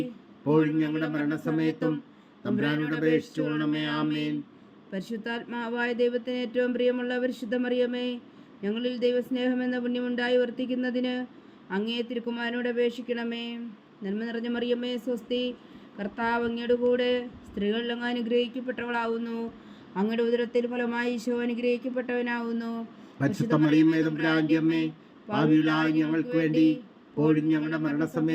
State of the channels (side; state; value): both; identical; correlation 1.00